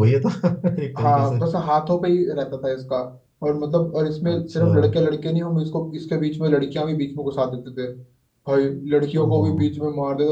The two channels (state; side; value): identical; both; correlation 1.00